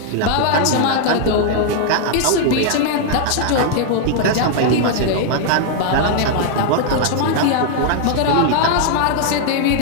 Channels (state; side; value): different; both; correlation 0.00